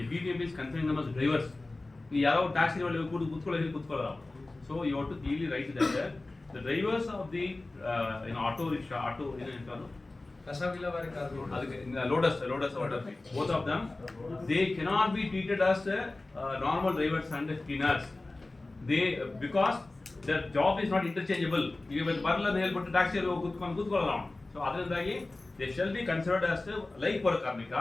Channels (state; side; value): quieter; right; 3.0 dB